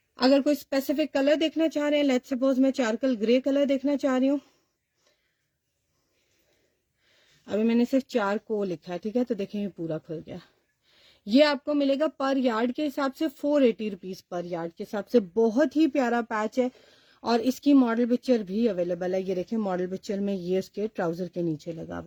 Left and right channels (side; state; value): both; identical; correlation 1.00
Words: अगर कोई स्पेसिफिक कलर देखना चाह रहे हैं, लेट्स सपोज मैं चारकल ग्रे कलर देखना चाह रही हूँ, अभी मैंने सिर्फ 4 को लिखा है, ठीक है, तो देखें ये पूरा खुल गया। ये आपको मिलेगा पर यार्ड के हिसाब से 480 रुपीज पर यार्ड के हिसाब से। बहुत ही प्यारा पैच है और इसकी मॉडल पिक्चर भी अवेलेबल है। ये देखिए मॉडल पिक्चर में ये उसके ट्राउजर के नीचे लगा